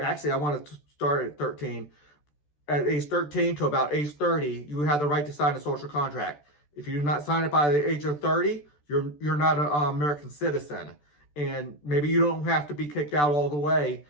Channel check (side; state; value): right; late; 14 ms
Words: I want to start at 13. At age 13 to about age 30, you have the right to sign a social contract. If you do not sign it by the age of 30, you're not an American citizen. And maybe you don't have to be kicked out all the way,